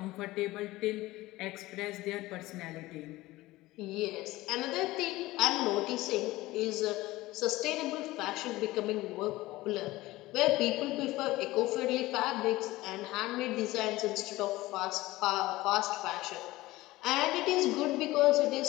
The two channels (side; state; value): right; quieter; 18.5 dB